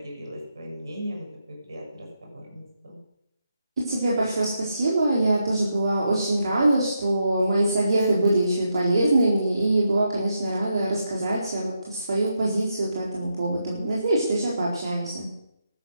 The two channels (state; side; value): inverted; both; correlation -0.83